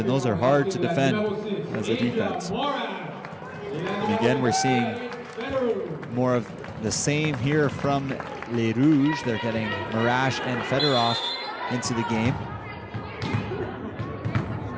those are hard to defend as a defense. And again, we're seeing more of the same here from Les Rouges. They're getting Marash and Fedorov into the game.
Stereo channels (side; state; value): both; identical; correlation 1.00